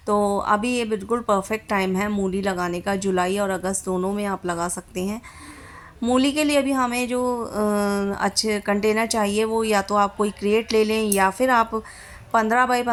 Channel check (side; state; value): both; identical; correlation 1.00